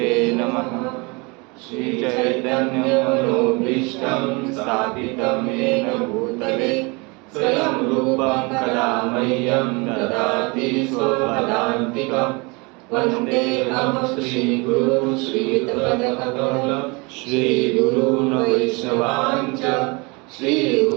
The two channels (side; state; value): left; quieter; 28.1 dB